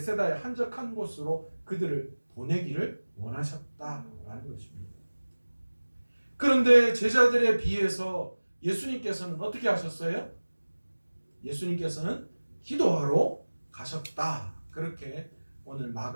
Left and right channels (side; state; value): both; inverted; correlation -1.00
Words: 한적한 곳으로 그들을 보내기를 원하셨다라는 것입니다. 그런데 제자들에 비해서 예수님께서는 어떻게 하셨어요? 예수님께서는 기도하러 가셨다. 그렇게 오늘